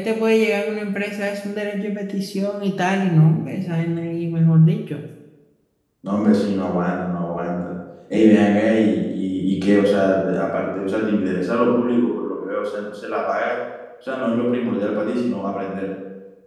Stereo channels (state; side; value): identical; both; correlation 1.00